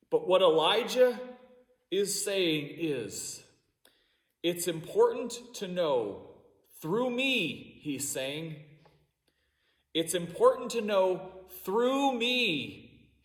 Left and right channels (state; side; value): identical; both; correlation 1.00